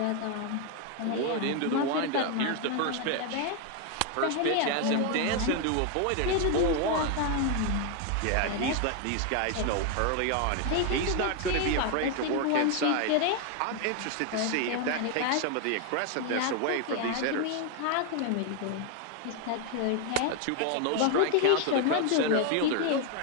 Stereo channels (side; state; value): both; different; correlation 0.01